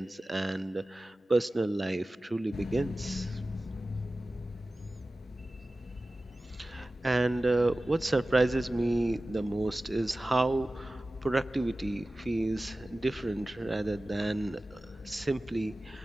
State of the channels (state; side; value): normal; both; correlation 0.96